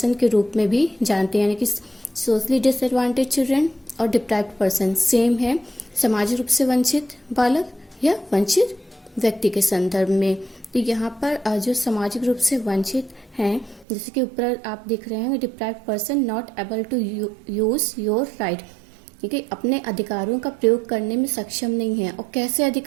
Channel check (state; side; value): drops out; left; at 13.9 s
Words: के रूप में भी जानते हैं। यानी कि सोशली डिसएडवांटेज चिल्ड्रन और डिप्राइव्ड पर्सन सेम है, सामाजिक रूप से वंचित बालक या वंचित व्यक्ति के संदर्भ में। तो यहाँ पर जो सामाजिक रूप से वंचित हैं, जैसे कि ऊपर आप देख रहे हैं, deprived person not able to use your right, कि अपने अधिकारों का प्रयोग करने में सक्षम नहीं है। और कैसे